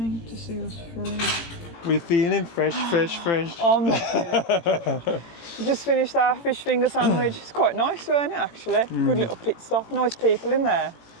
to see us through. We're feeling fresh. I'm not feeling. We just finished our fish finger sandwich. It's quite nice, weren't it, actually? Good little pit stop, nice people in there.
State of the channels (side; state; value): right; late; 18 ms